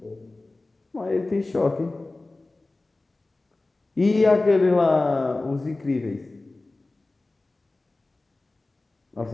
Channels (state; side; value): quieter; right; 3.1 dB